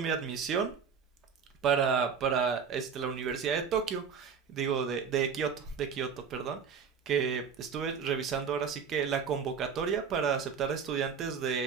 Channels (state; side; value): quieter; left; 6.4 dB